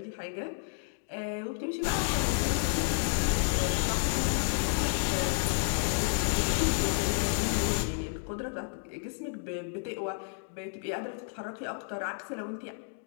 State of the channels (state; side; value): silent; right; digital silence